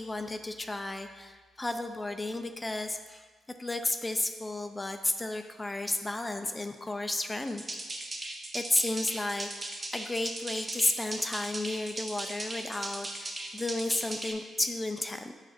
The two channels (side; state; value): both; normal; correlation 0.95